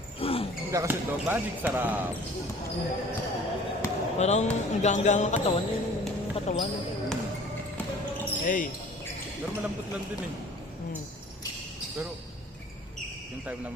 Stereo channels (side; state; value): both; normal; correlation 0.49